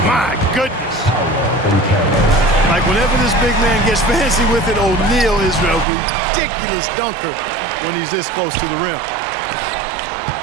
my goodness. Like whenever this big man gets fancy with it, O'Neal is a ridiculous dunker when he's this close to the rim.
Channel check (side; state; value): left; drops out; at 5.9 s